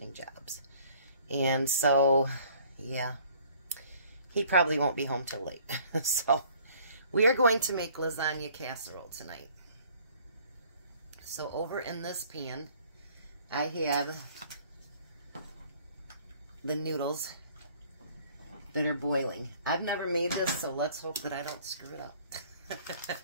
jobs. And so, yeah, he probably won't be home till late. So, we are going to make lasagna casserole tonight. So, over in this pan, I have the noodles that are boiling. I've never made this, so let's hope that I don't screw it up.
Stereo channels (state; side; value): inverted; both; correlation -0.56